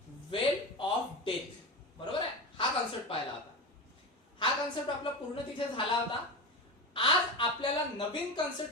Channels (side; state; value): both; normal; correlation 0.23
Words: वेल ऑफ डेथ. बरोबर आहे, हा कॉन्सेप्ट पाहिला होता. हा कॉन्सेप्ट आपला पूर्ण तिथे झाला होता. आज आपल्याला नवीन